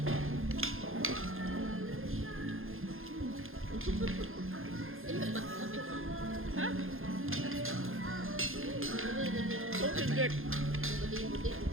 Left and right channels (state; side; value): late; left; 0.60 ms